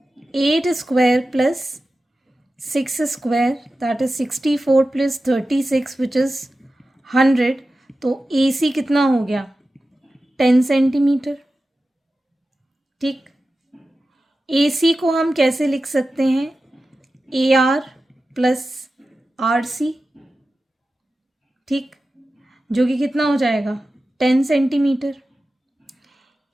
8 square plus 6 square, that is 64 plus 36 which is 100। तो ए सी कितना हो गया? 10 सेंटीमीटर, ठीक। ए सी को हम कैसे लिख सकते हैं? A R plus R C, ठीक, जो कि कितना हो जाएगा? 10 सेंटीमीटर।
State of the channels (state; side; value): normal; both; correlation 0.94